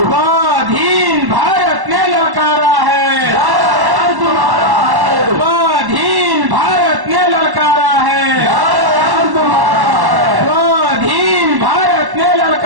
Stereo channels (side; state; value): left; late; 1.1 ms